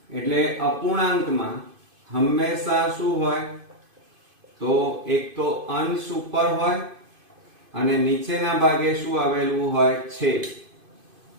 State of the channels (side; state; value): left; late; 2.5 ms